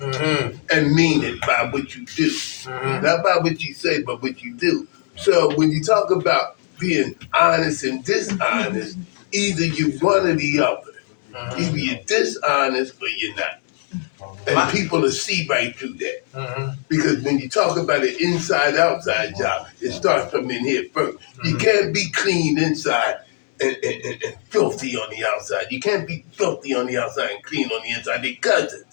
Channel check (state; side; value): silent; right; digital silence